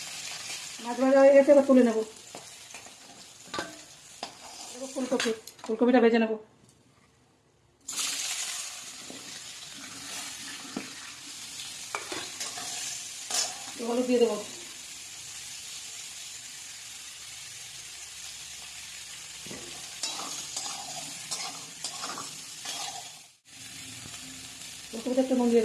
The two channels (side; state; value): both; identical; correlation 1.00